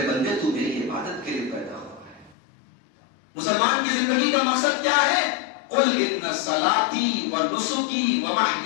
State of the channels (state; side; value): drops out; right; at 2.4 s